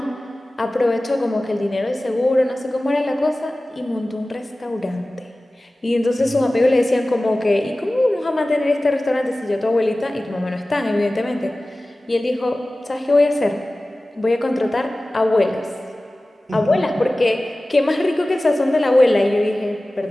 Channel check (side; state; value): both; normal; correlation 0.97